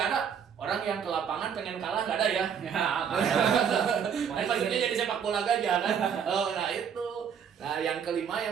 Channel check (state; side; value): quieter; left; 7.6 dB